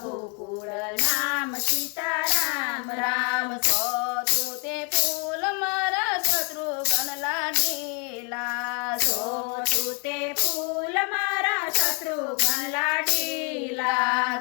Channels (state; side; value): quieter; right; 35.8 dB